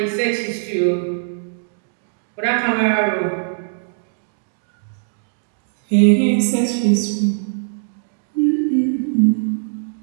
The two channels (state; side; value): silent; left; digital silence